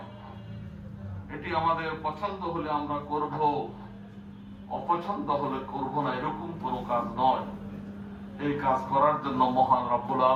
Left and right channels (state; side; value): identical; both; correlation 1.00